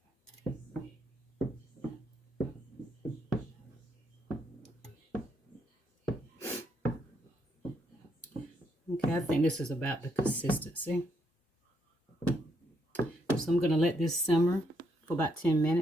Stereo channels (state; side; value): normal; both; correlation 0.75